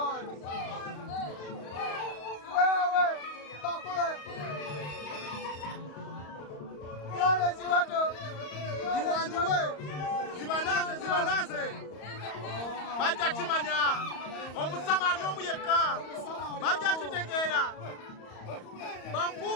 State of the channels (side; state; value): right; late; 34 ms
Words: Wewe bakule. Yole ziwato. Ziwanjiwe. Zibanaze. Bajja kimanya. Omusamali omuyeka. Bajja kitegera.